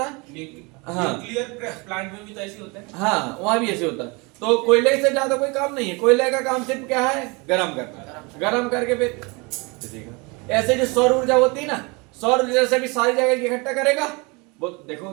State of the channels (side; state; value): left; quieter; 28.1 dB